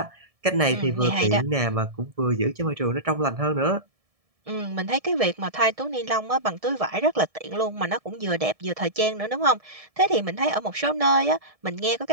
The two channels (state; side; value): late; left; 1.7 ms